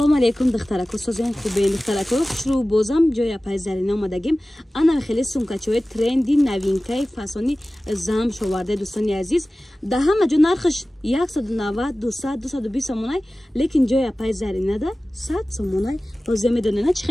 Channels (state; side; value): normal; both; correlation 0.97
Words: алейкум духтарако, созен хубен духтарако, хушру бозам ҷоя пайзарина омадагим. Ана хеле сумкачои тренди новинкаи фасони зам шоварда дӯстони азиз. Да ҳама ҷо нархаш 190, 200, 220 сомонай, лекин ҷоя пайзаринада 100 сомонай. Ҳозир медонена чӣ